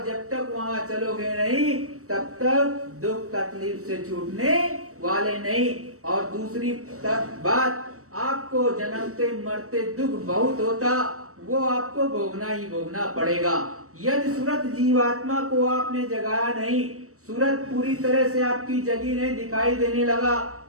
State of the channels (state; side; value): late; left; 0.65 ms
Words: जब तक वहाँ चलोगे नहीं तब तक दुख तकलीफ से छूटने वाले नहीं। और दूसरी बात, आपको जन्मते मरते दुख बहुत होता, वो आपको भोगना ही भोगना पड़ेगा। यदि सूरत जीवात्मा को आपने जगाया नहीं, सूरत पूरी तरह से आपकी जगी नहीं, दिखाई देने लगा,